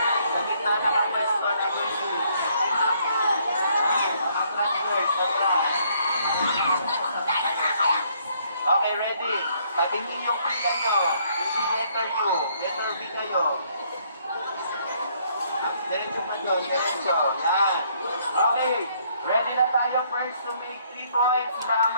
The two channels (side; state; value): both; inverted; correlation -0.67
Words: sa gitna na ang pwesto na gusto. Okay, ready? Tabingin yung pila nyo. Hindi letter U. Letter B kayo. Diretso pa doon. Diretso. Yan. Okay. Ready na tayo first to make 3 points para